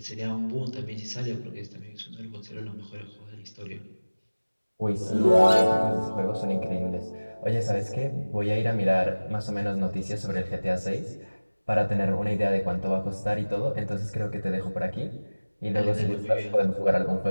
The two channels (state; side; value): inverted; both; correlation -1.00